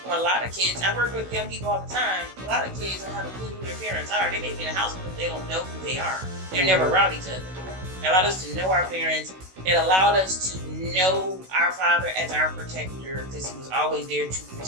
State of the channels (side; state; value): left; late; 16 ms